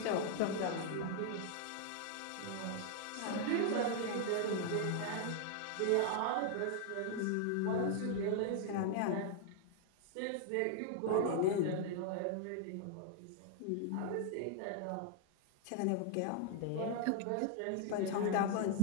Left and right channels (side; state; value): both; different; correlation 0.00